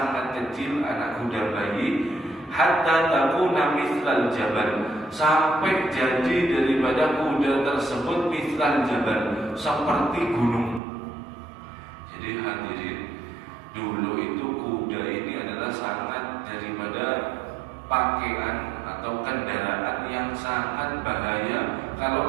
kecil, anak kuda bayi, hatta takuna mithlal jabal, sampai jadi daripada kuda tersebut mithlal jabal, seperti gunung. Jadi hadirin, dulu itu kuda ini adalah sangat daripada pakaian atau kendaraan yang sangat bahaya kalau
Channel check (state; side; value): drops out; left; at 10.8 s